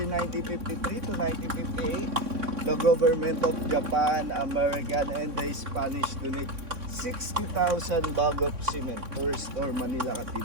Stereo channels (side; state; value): left; late; 3.6 ms